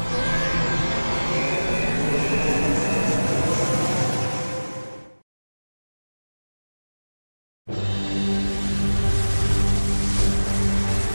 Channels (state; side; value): inverted; both; correlation -1.00